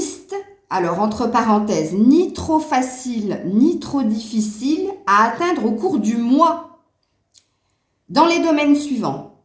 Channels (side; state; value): both; identical; correlation 1.00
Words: Alors, entre parenthèses, ni trop facile, ni trop difficile à atteindre au cours du mois. Dans les domaines suivants.